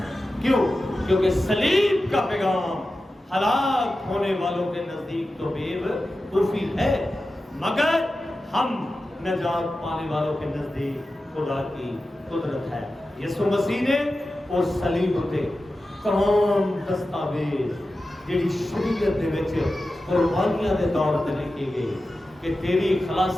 کیوں؟ کیونکہ صلیب کا پیغام ہلاک ہونے والوں کے نزدیک تو بے وقوفی ہے، مگر ہم نجات پانے والوں کے نزدیک خدا کی قدرت ہے۔ یسوع مسیح نے اس صلیب تے تمام دستاویز جڑی شریعت دے وچ قربانیاں دے طور تے لکھی گئی کہ تیری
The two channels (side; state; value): both; normal; correlation 0.93